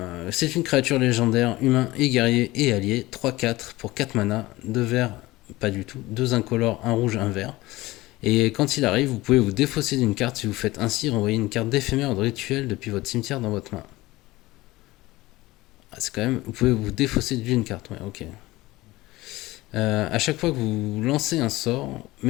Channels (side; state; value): right; quieter; 19.1 dB